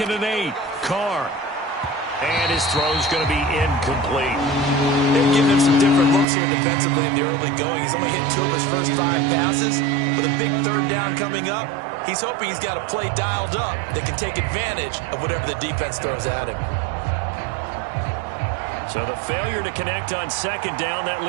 and 8, Carr. And his throw's going to be incomplete. They're giving him some different looks here defensively in the early going. He's only hit 2 of his first 5 passes. With a big 3rd down coming up, he's hoping he's got a play dialed up that can take advantage of whatever the defense throws at him. So the failure to connect on 2nd down, that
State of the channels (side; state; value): left; drops out; at 6.2 s